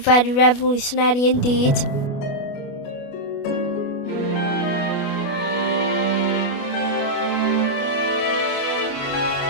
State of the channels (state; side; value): late; right; 28 ms